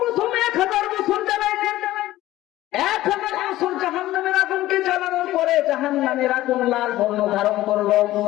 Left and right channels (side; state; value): right; quieter; 15.6 dB